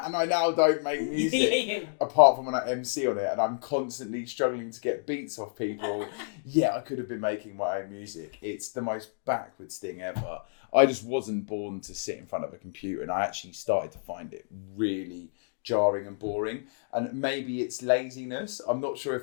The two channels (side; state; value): right; silent; digital silence